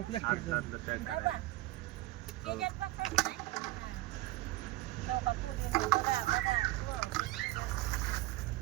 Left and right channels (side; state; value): left; quieter; 18.1 dB